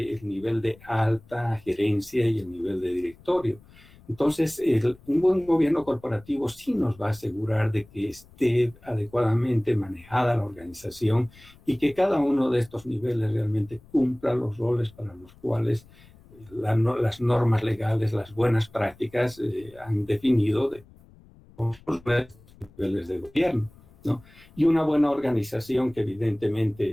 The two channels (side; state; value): left; noise; rumble, 25 dB below the sound